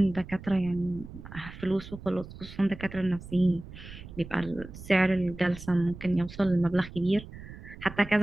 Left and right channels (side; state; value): right; noise; rumble, 15 dB below the sound